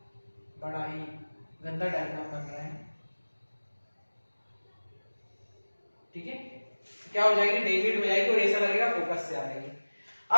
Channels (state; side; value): inverted; both; correlation -1.00